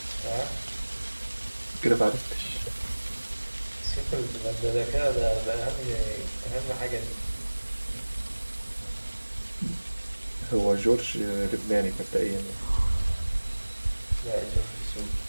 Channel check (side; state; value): both; inverted; correlation -1.00